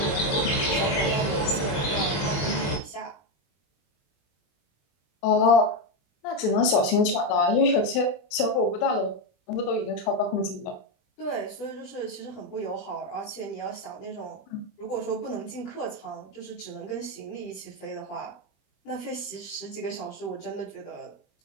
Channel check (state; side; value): late; right; 20 ms